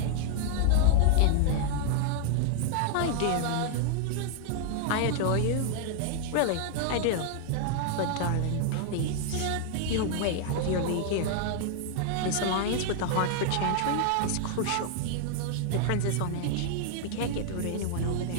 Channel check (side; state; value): both; different; correlation 0.00